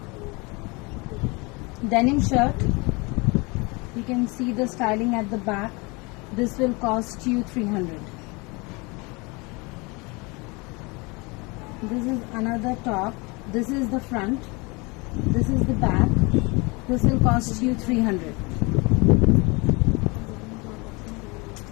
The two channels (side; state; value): right; quieter; 27.4 dB